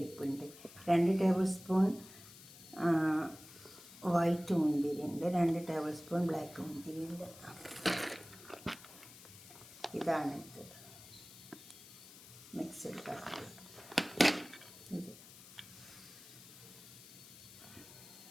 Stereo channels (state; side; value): noise; left; hiss, 18 dB below the sound